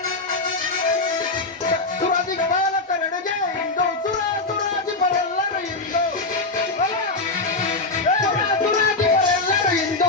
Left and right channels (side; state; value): right; quieter; 3.3 dB